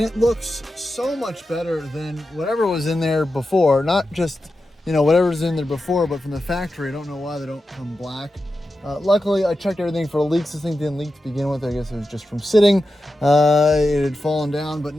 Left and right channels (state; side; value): normal; both; correlation 0.91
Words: it looks so much better than whatever was in there before. Not just, whatever was in there before, but from the factory. I don't know why they don't come black. Luckily, I checked everything for leaks. This thing didn't leak to begin with. I guess it was just from sitting. It had fallen down, but